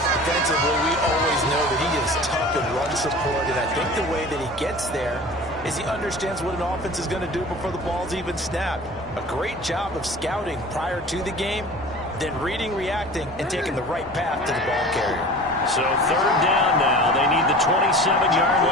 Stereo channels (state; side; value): normal; both; correlation 0.40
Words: Defensively, we always know that he is tough in run support, and I think the way that he gets there is he understands what an offense is going to do before the ball's even snapped. A great job of scouting prior to the game, then reading, reacting, and taking the right path to the ball carrier. So 3rd down now. They need the 27-yard